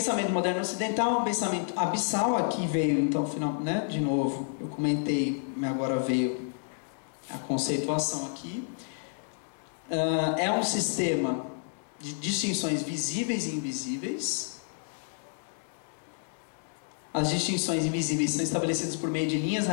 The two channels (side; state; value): right; silent; digital silence